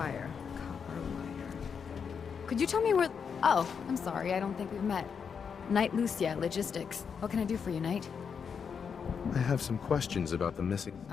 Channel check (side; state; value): right; quieter; 6.5 dB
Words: Copper wire. Could you tell me where... Oh, I'm sorry. I don't think we've met. Knight Lucia, Logistics. What can I do for you, Knight? I have some questions about the missing...